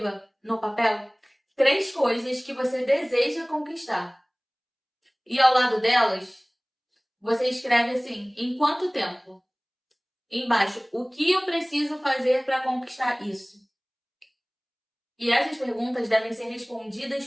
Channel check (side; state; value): both; identical; correlation 1.00